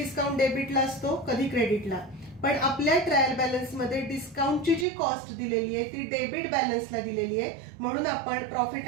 डेबिटला असतो, कधी क्रेडिटला. पण आपल्या ट्रायल बॅलन्स मध्ये डिस्काउंटची जी कॉस्ट दिलेली आहे ती डेबिट बॅलन्सला दिलेली आहे. म्हणून आपण प्रॉफिट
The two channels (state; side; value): drops out; left; at 4.9 s